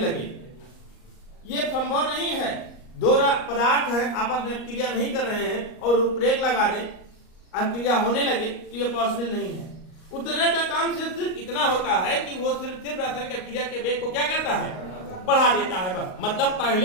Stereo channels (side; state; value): right; late; 38 ms